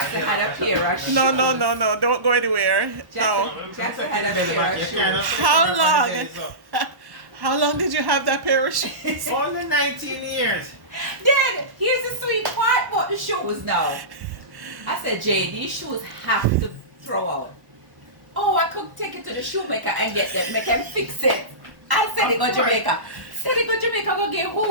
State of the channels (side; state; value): left; late; 1.1 ms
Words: Jackson had a pair of shoes. No. Don't go anywhere. No. Jackson had a pair of shoes. How long? How long did you have that pair of shoes? Only 19 years. Then here's the sweet part about the shoes now. I said, Jay, these shoes have to throw out. Oh, I could take it to the shoemaker and get them, make them fix it. I said they go Jamaica. Said they go Jamaica, go get